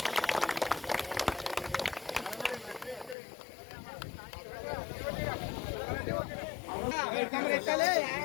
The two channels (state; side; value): drops out; right; at 3.2 s